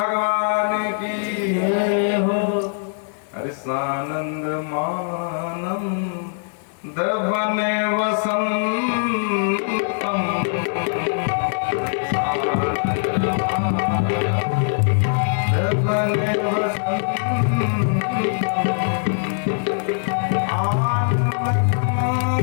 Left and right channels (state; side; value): silent; right; 64 dB below the other